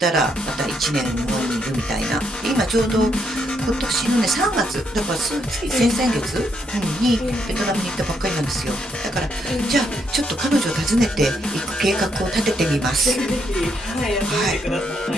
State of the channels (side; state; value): both; normal; correlation 0.76